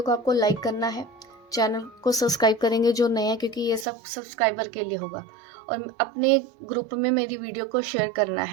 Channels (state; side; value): drops out; left; at 3.9 s